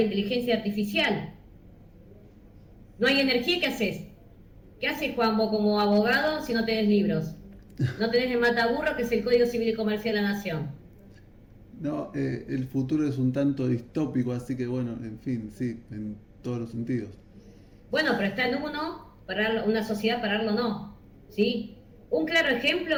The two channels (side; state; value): both; identical; correlation 1.00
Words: inteligencia artificial? No hay energía, ¿qué haces? ¿Qué haces, Juan, vos como abogado si no tenés libros? No tenés el mataburro, que es el Código Civil y Comercial de la Nación. No, el futuro es un tanto distópico, así que bueno, en fin, sí, en todos los sentidos. Bueno, pero está en uno, una sociedad pararlo no, ¿sí? Un claro